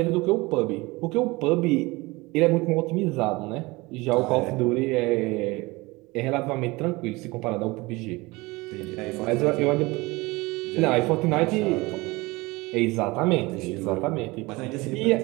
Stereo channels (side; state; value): left; quieter; 22.8 dB